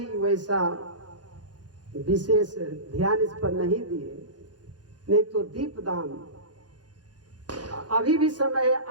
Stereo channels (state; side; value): late; left; 0.69 ms